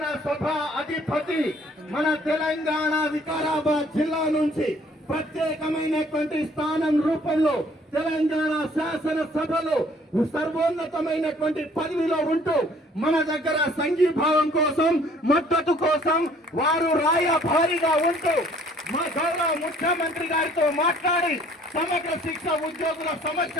అధిపతి మన తెలంగాణ వికారాబాద్ జిల్లా నుంచి ప్రత్యేకమైనటువంటి స్థానం రూపంలో తెలంగాణ శాసనసభలో సర్వోన్నతమైనటువంటి పదవిలో ఉంటూ మన దగ్గర సంఘీభావం కోసం మద్దతు కోసం వారు రాయభారిగా ఉంటూ మా గౌరవ ముఖ్యమంత్రి గారితో మాట్లాడి సమగ్ర శిక్ష ఉద్యోగుల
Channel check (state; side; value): normal; both; correlation 0.58